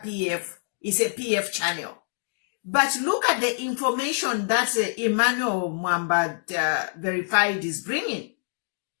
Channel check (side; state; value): right; silent; digital silence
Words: PF. It's a PF channel. But look at the information that Emmanuel Mwamba verified is bringing.